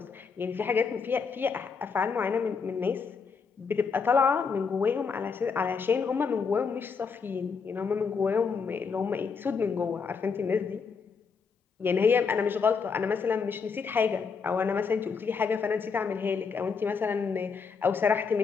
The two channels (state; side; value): quieter; right; 5.5 dB